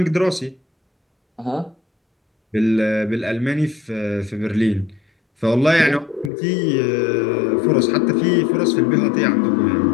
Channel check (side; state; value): right; drops out; at 6.3 s